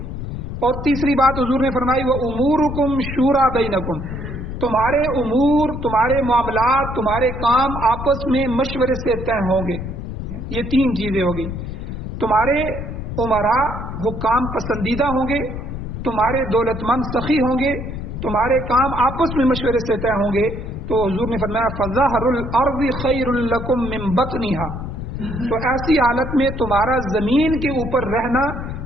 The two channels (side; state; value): left; noise; rumble, 7 dB below the sound